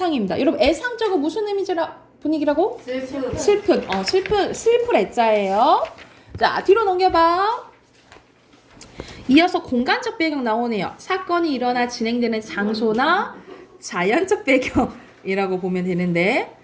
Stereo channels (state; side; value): identical; both; correlation 1.00